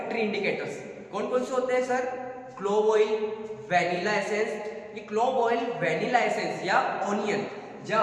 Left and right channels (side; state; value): both; identical; correlation 1.00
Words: इंडिकेटर्स कौन कौन से होते हैं sir? Clove oil, vanilla essence. ये क्लोव ऑयल, वैनिला एसेंस या ओनियन